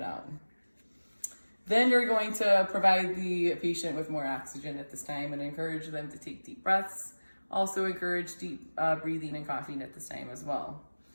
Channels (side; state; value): both; inverted; correlation -1.00